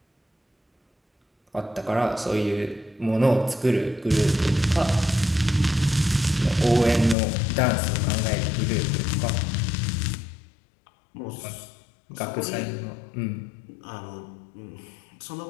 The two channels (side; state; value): right; drops out; at 7.2 s